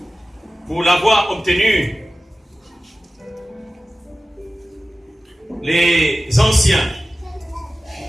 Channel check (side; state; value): both; normal; correlation 0.95